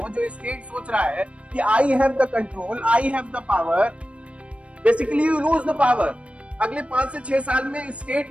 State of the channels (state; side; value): late; left; 0.062 ms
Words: जो स्टेट सोच रहा है कि I have the control, I have the power, basically you lose the power. अगले 5 से 6 साल में